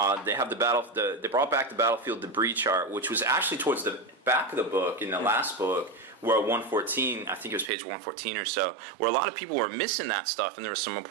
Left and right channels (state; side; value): drops out; left; at 7.7 s